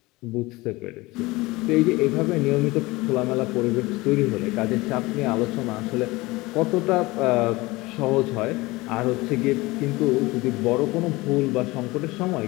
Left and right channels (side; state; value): right; quieter; 21.4 dB